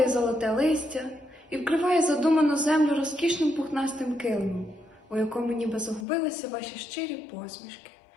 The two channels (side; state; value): right; drops out; at 6.1 s